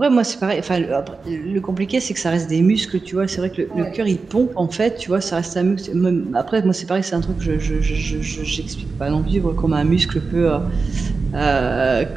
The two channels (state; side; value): quieter; left; 4.4 dB